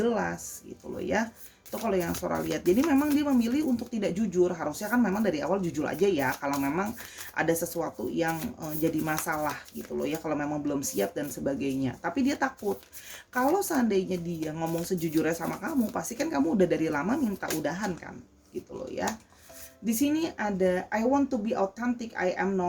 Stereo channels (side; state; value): both; identical; correlation 1.00